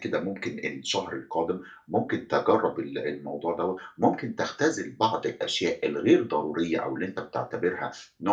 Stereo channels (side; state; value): both; identical; correlation 1.00